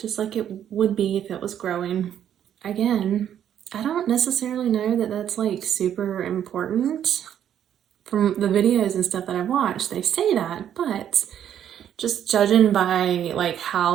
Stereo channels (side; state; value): left; quieter; 9.9 dB